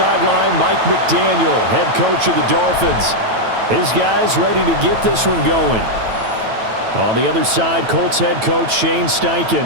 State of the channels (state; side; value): late; left; 9.1 ms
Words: Mike McDaniel, head coach of the Dolphins. His guys ready to get this one going. On the other side, Colts head coach Shane